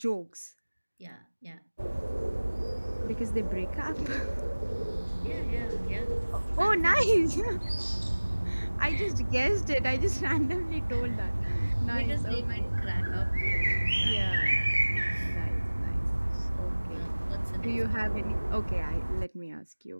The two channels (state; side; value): inverted; both; correlation -1.00